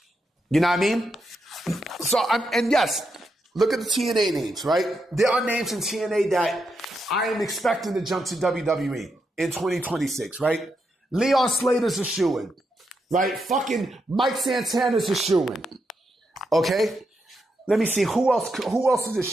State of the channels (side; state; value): both; normal; correlation 0.83